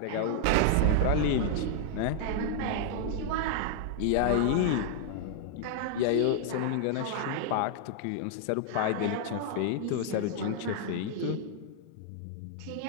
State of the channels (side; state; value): both; different; correlation 0.00